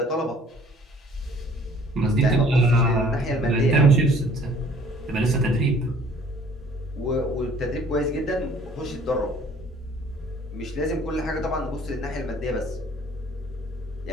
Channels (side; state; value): both; normal; correlation 0.54